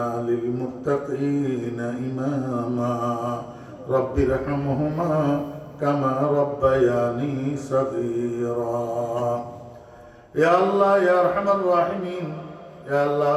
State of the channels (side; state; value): both; identical; correlation 1.00